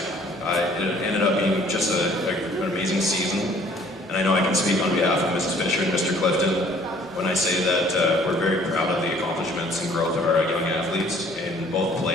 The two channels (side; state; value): right; noise; hum, 30 dB below the sound